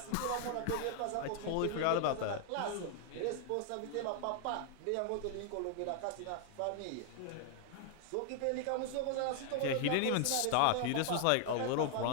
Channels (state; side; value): different; both; correlation 0.00